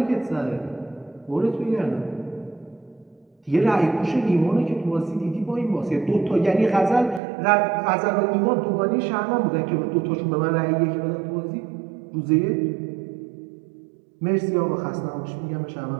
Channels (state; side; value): drops out; left; at 7.2 s